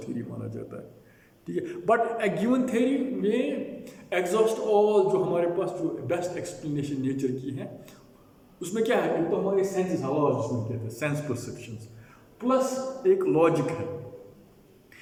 थियरी माना जाता है. ठीक है. बट ए गिवन थियरी में एग्जॉस्ट ऑल जो हमारे पास जो बेस्ट एक्सप्लेनेशन नेचर की है, उसमें क्या है, एक तो हमारे सेंसेस हवा जिसमें कहते हैं सेंस परसेप्शंस, प्लस एक लॉजिक है.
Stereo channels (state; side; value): identical; both; correlation 1.00